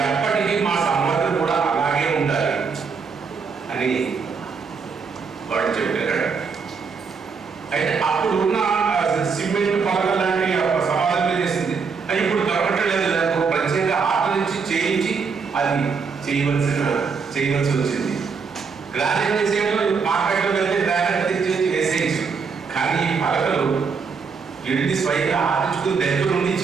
ఎప్పటికీ మా సమాజం కూడా అలాగే ఉండాలి అని వాడు చెప్పారు. అయితే అప్పుడు ఉన్న సిమెంట్ పలకలు లాంటి సమాధానం చేసింది, అది ఇప్పుడు దొరకట్లేదు. దానికి ప్రత్యేక ఆట నుంచి చేయించి అది చేయవలసి వచ్చింది. గ్రానైట్ వేసేయడం మార్కెట్లో వెళ్తే గ్రానైట్ తెచ్చి వేసేయచ్చు. కానీ ఈ పలకలు వెళ్ళి స్వయంగా ఆడించుకుని దగ్గర నుండి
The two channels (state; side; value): quieter; left; 5.4 dB